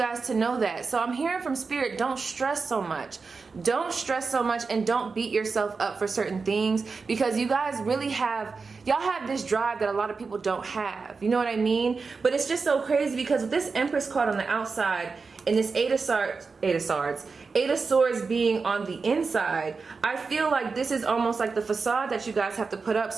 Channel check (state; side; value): quieter; left; 4.6 dB